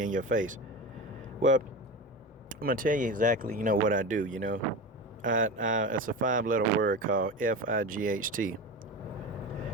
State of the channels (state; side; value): normal; both; correlation 0.26